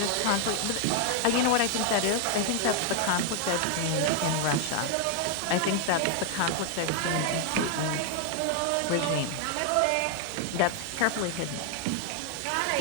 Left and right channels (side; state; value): both; different; correlation 0.00